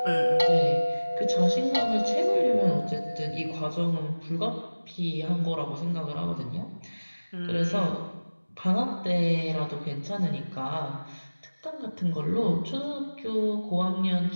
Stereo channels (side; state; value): both; inverted; correlation -1.00